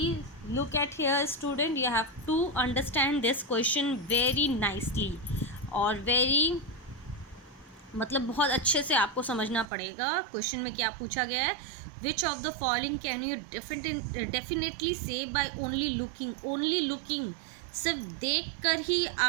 look at here student, you have to understand this question very nicely or very मतलब बहुत अच्छे से आपको समझना पड़ेगा। क्वेश्चन में क्या पूछा गया है, which of the following can you definitely say by only looking. Only looking, सिर्फ देख कर ही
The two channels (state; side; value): drops out; left; at 9.7 s